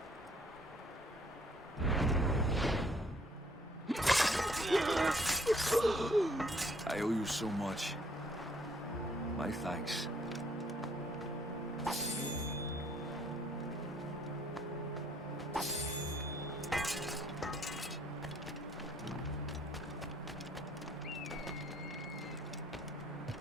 I owe you so much. My thanks.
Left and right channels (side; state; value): both; normal; correlation 0.63